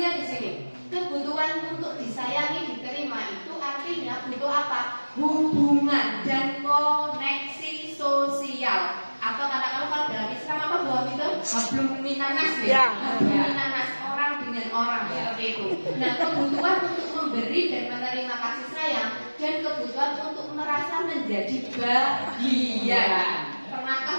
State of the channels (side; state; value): both; inverted; correlation -1.00